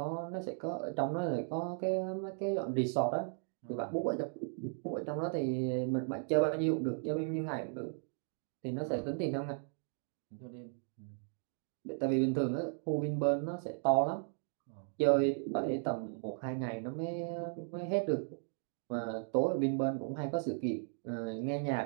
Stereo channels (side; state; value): left; silent; 54 dB below the other